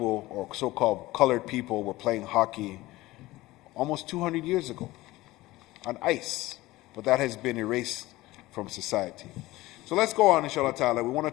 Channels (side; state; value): right; quieter; 18.5 dB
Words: or so-called colored people were playing hockey almost 200 years ago on ice, but that has been erased from society. So let's go on, inshallah ta'ala. We want to